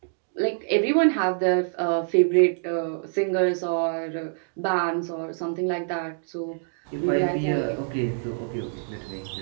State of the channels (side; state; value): left; silent; digital silence